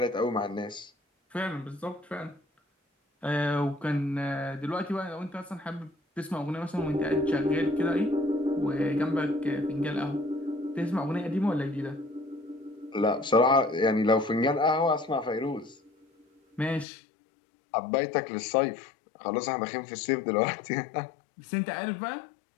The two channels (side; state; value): right; drops out; at 16.9 s